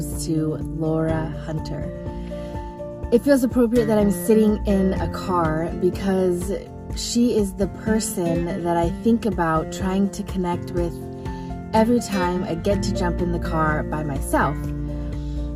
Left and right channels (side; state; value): both; identical; correlation 1.00